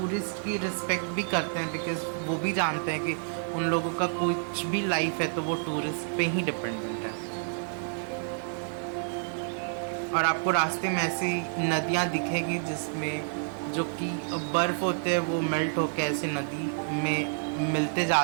की रिस्पेक्ट भी करते हैं, बिकॉज वो भी जानते हैं कि उन लोगों का कुछ भी लाइफ है तो वो टूरिस्ट पे ही डिपेंडेंट है। और आपको रास्ते में ऐसी नदियाँ दिखेगी जिसमें जो कि बर्फ़ होते हैं वो मेल्ट होकर ऐसे नदी में मिलते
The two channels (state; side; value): silent; left; digital silence